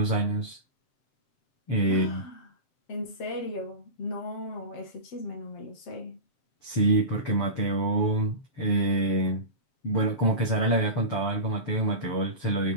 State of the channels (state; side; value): late; right; 7.5 ms